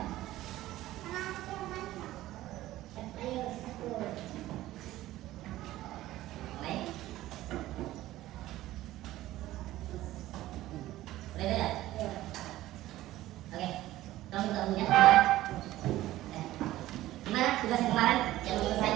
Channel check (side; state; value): left; quieter; 15.5 dB